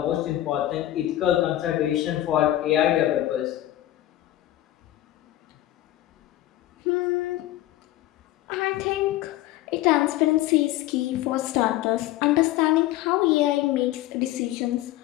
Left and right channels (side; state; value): right; quieter; 14.6 dB